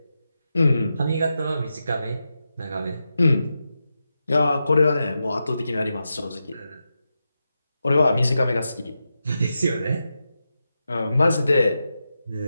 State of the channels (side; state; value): both; inverted; correlation -0.89